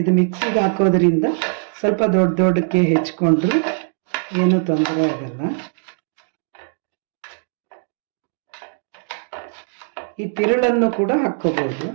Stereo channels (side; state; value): left; silent; digital silence